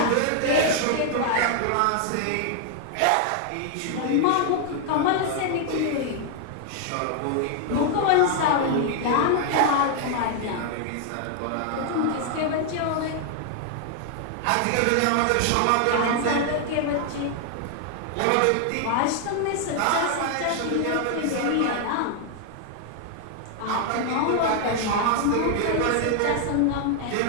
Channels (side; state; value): both; different; correlation 0.00